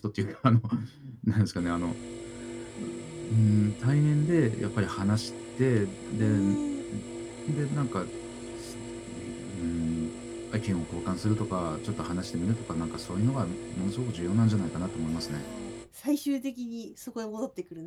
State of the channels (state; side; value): identical; both; correlation 1.00